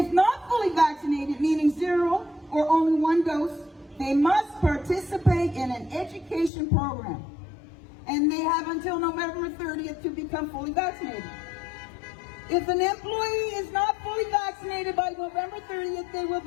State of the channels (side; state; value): right; drops out; at 6.5 s